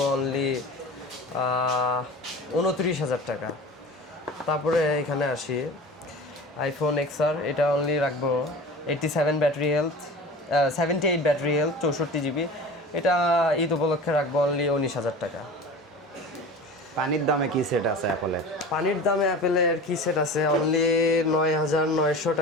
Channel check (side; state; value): both; normal; correlation 0.36